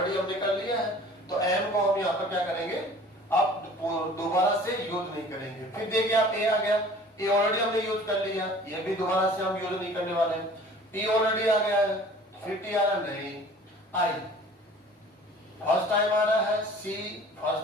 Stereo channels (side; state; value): both; normal; correlation 0.47